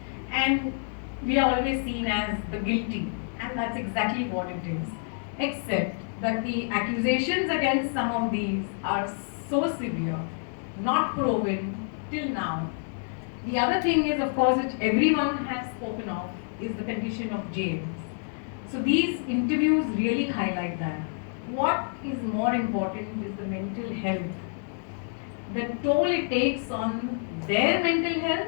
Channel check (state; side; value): silent; right; 59 dB below the other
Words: And we are always seen as the guilty. And that's exactly what it is. Except that the accusations against some of these are so severe, not proven till now. The other thing is, of course, which everyone has spoken of, is the condition of jails. So these interviews really highlight that. What is more important is the mental health, the toll it takes on their mental